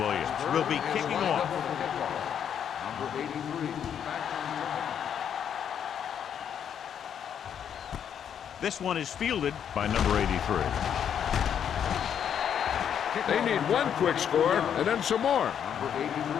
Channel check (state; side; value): quieter; right; 8.7 dB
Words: will be kicking off. Number 83. This one is fielded by number 83. They need one quick score and then some more. Number 83